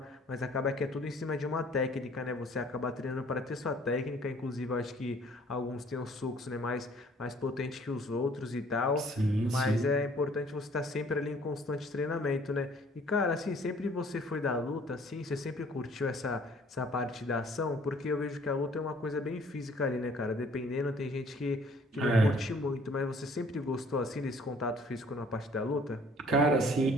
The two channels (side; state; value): both; normal; correlation 0.57